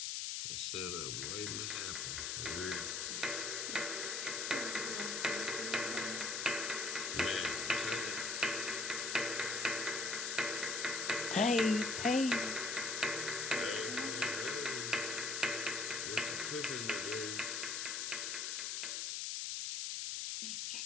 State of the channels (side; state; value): left; noise; hiss, 1 dB below the sound